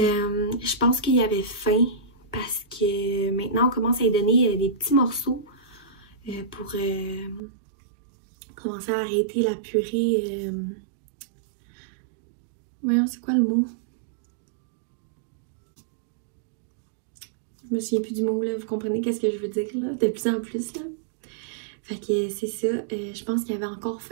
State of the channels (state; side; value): drops out; left; at 7.4 s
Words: pense qu'il avait faim parce que maintenant on commence à lui donner des petits morceaux pour commencer à arrêter la purée. Voyons, c'est quoi le mot? Je me souviens plus du mot, là, vous comprenez qu'est-ce que je veux dire, là, de plus en plus, là. Fait que c'est ça, je pense qu'il avait encore